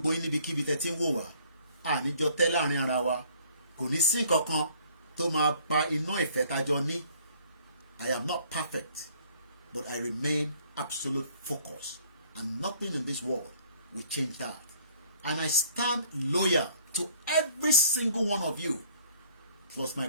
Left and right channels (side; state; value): both; inverted; correlation -0.58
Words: yín níbikíbi tẹ́ ti ń wò wá. Àníjọ tẹ́ láàrin ara wa. Kò ní sí kankan tó máa pa iná ìfẹ́ tájọ ní. I am not perfect, but I remain absolute focus. And nothing in this world will change that. And I stand loyal to every single one of you. Plus my